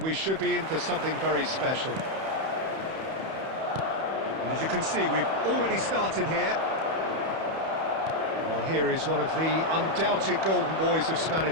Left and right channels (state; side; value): late; left; 31 ms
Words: we should be in for something very special. And as you can see, we've already started here. Well, here is one of the undoubted golden boys of